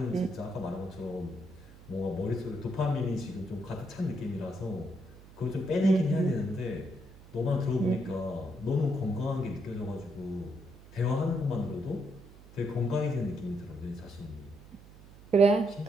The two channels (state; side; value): noise; right; hum, 21 dB below the sound